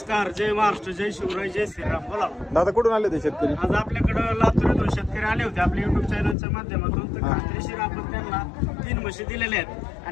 जय महाराष्ट्र, जय शिवराय, जय श्रीराम. बोला दादा कुठून आले ते शेतकरी? आज आपल्याकडं लातूर शेतकरी आले होते आपल्या युट्यूब चॅनलच्या माध्यमातून. तर खात्रीशीर आपण त्यांना 3 म्हशी दिलेल्या आहेत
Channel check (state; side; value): drops out; right; at 6.4 s